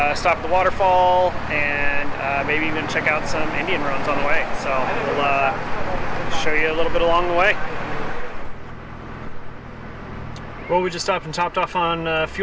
at the waterfall, and maybe even check out some Indian ruins on the way. So we'll show you a little bit along the way. Well, we just stopped and topped off on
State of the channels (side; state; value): both; identical; correlation 1.00